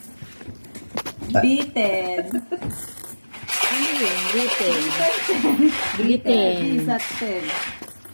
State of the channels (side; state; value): both; inverted; correlation -1.00